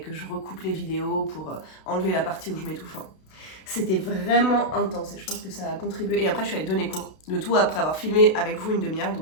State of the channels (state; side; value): late; right; 32 ms